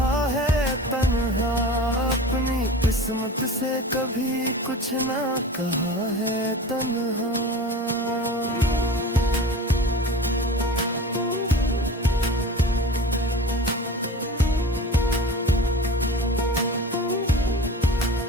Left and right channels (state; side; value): normal; both; correlation 0.36